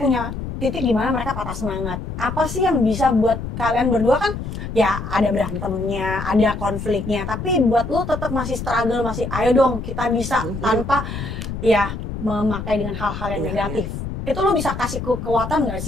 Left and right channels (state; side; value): noise; left; rumble, 6 dB below the sound